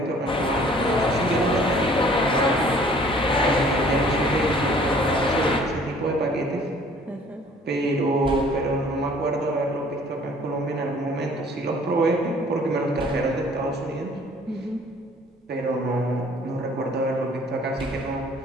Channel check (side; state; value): both; normal; correlation 0.55